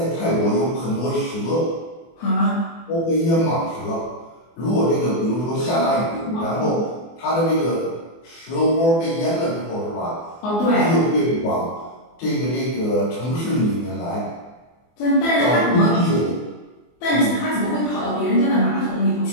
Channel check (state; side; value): late; right; 24 ms